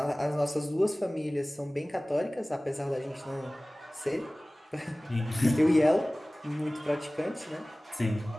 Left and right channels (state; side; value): normal; both; correlation 0.98